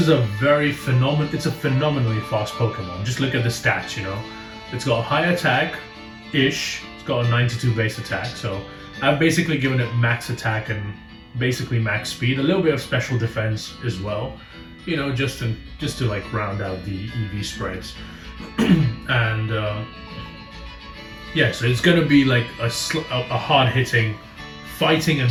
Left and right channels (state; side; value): identical; both; correlation 1.00